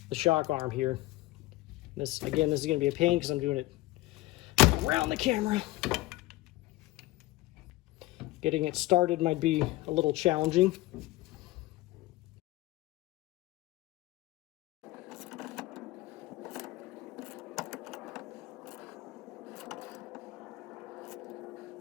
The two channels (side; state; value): right; quieter; 18.6 dB